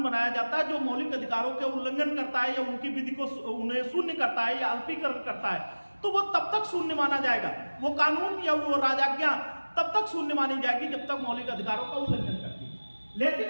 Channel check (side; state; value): both; inverted; correlation -1.00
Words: बनाया जाता है जो मौलिक अधिकारों के उल्लंघन करता है या उनकी विधि को उन्हें शून्य करता है या अल्पीकरण करता है, तो वो तब तक शून्य माना जाएगा। वो कानून या वो राजाज्ञा तब तक शून्य मानी जाएगी जब तक मौलिक अधिकारों का उल्लंघन करती है। लेकिन